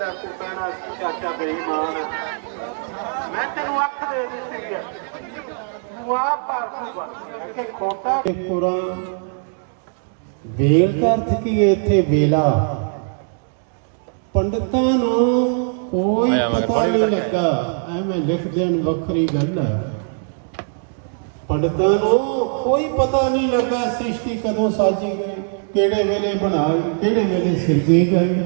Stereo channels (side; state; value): left; silent; 65 dB below the other